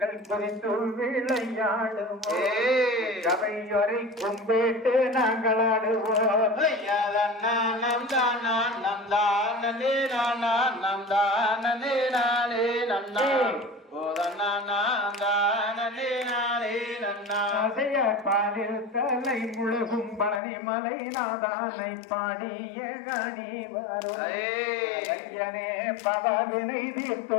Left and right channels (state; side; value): drops out; right; at 20.4 s